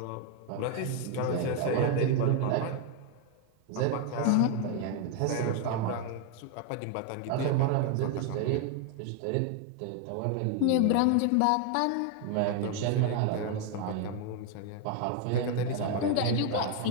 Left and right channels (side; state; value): both; different; correlation 0.01